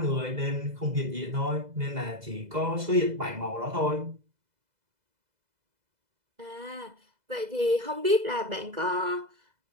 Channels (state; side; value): late; left; 2.0 ms